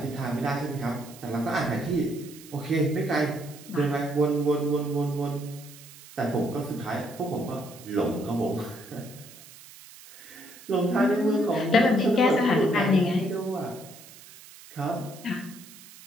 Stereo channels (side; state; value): right; noise; hiss, 19 dB below the sound